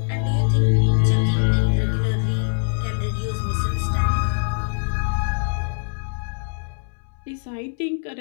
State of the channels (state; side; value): silent; right; 64 dB below the other